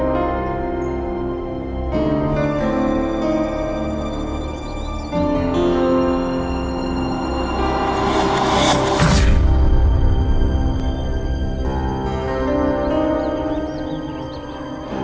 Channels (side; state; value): both; identical; correlation 1.00